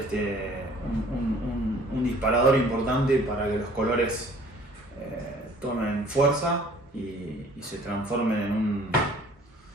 un disparador importante para que los colores tomen fuerza y se transformen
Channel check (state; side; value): normal; both; correlation 0.53